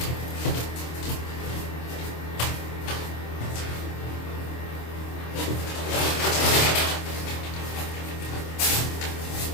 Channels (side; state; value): right; late; 26 ms